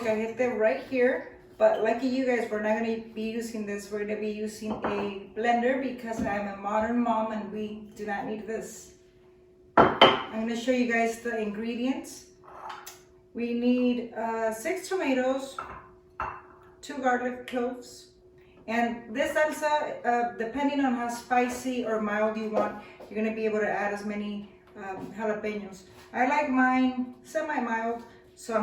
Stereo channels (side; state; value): both; identical; correlation 1.00